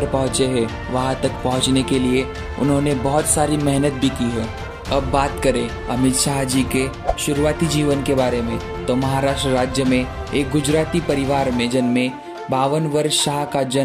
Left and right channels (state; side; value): identical; both; correlation 1.00